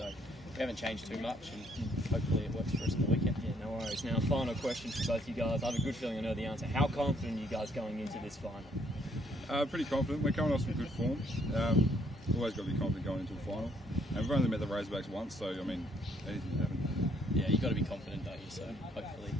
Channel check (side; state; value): both; normal; correlation 0.67